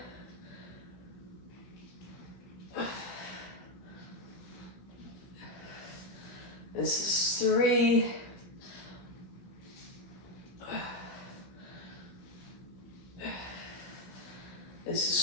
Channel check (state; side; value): late; right; 17 ms